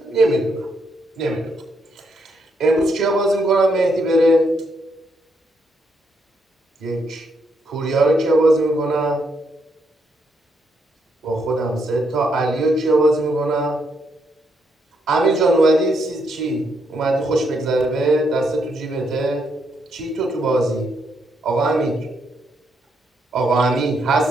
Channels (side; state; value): both; normal; correlation 0.77